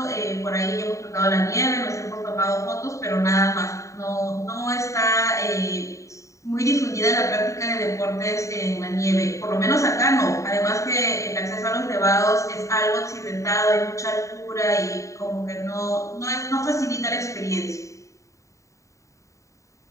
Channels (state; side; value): late; right; 0.15 ms